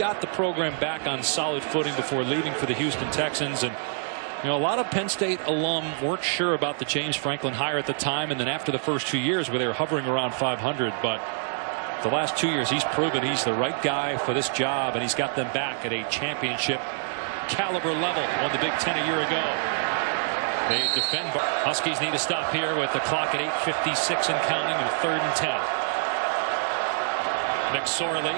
the program back on solid footing before leaving for the Houston Texans. And you know, a lot of Penn State alum weren't sure about the James Franklin hire at the time, and then after the first 2 years where they were hovering around 500. But the last 2 years he's proven he's the right guy for this job, and he's got them back at a championship caliber level. Won the Big Ten a year ago. They defend. Huskies need to stop here with the clock at 8:56 and counting, and 3rd and 10. McSorley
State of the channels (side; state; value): left; silent; 61 dB below the other